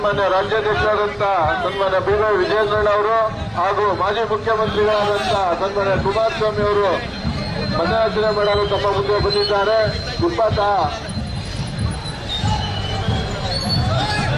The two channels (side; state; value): both; identical; correlation 1.00